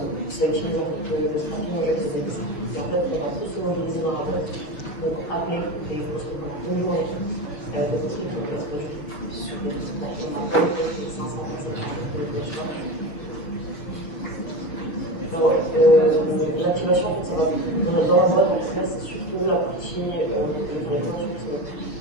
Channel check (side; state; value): right; late; 6.4 ms